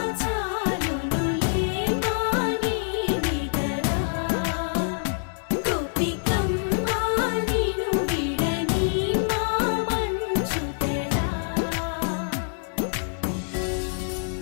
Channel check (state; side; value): silent; right; digital silence